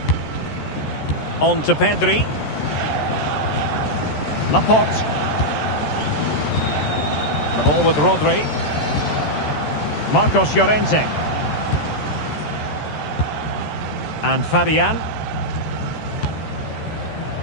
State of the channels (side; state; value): right; late; 14 ms